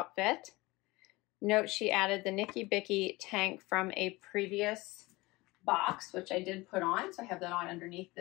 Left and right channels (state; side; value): quieter; right; 21.8 dB